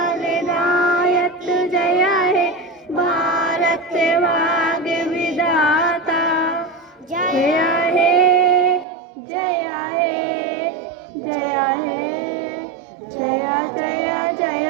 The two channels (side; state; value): left; drops out; at 8.8 s